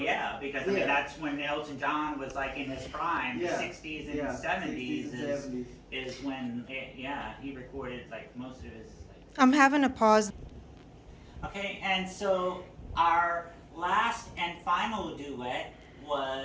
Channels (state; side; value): identical; both; correlation 1.00